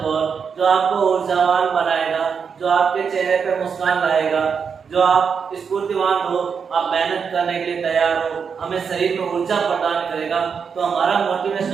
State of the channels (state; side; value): quieter; left; 6.3 dB